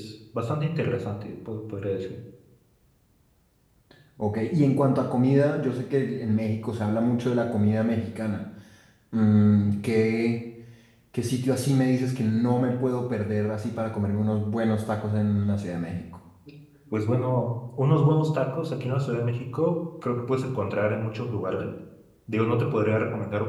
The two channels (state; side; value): identical; both; correlation 1.00